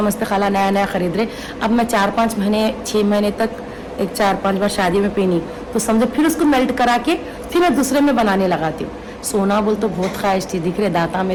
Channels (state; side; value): identical; both; correlation 1.00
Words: खाला नया खरीद रहे। अब मैं 4-5 महीने 6 महीने तक एक 4-5 बार शादी में पहनी, तो समझो फिर उसको मेल्ट करा के फिर मैं दूसरे में बनाने लगाती हूँ। सोना बोल तो बहुत ख्वाहिश थी, दिख रहे दाता